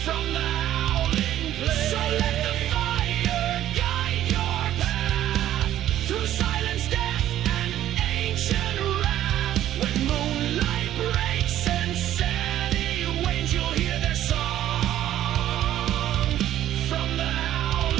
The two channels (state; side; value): quieter; left; 12.4 dB